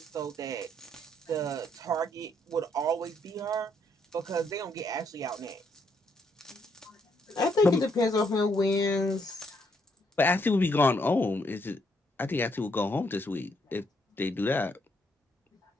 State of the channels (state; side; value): normal; both; correlation 0.73